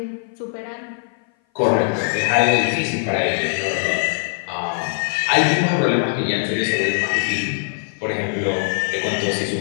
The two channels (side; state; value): right; silent; 57 dB below the other